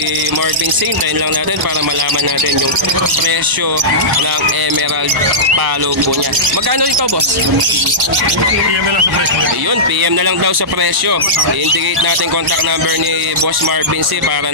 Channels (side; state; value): both; normal; correlation -0.16